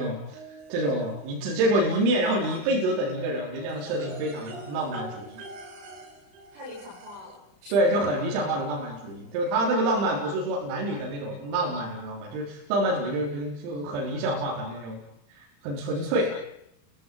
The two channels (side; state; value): left; late; 35 ms